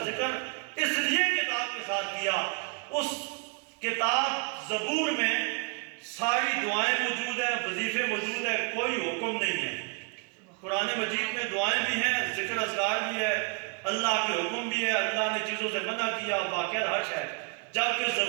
ذکر اس لیے کتاب کے ساتھ کیا، اس کتاب زبور میں ساری دعائیں موجود ہیں، وظیفے موجود ہیں، کوئی حکم نہیں ہے۔ قرآن مجید میں دعائیں بھی ہیں، ذکر اذکار بھی ہے، اللہ کے حکم بھی ہے، اللہ نے چیزوں سے منع کیا، واقعہ حش ہے، جبکہ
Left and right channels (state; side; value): quieter; left; 35.3 dB